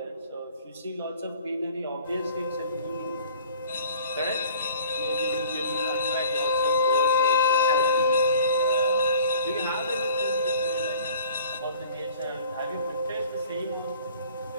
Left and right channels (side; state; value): both; inverted; correlation -0.50